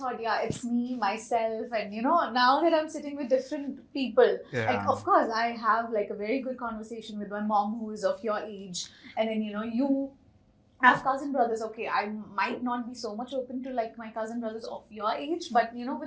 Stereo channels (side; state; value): both; identical; correlation 1.00